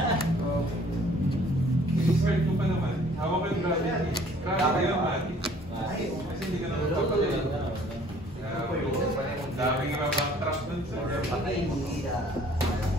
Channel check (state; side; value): normal; both; correlation 0.56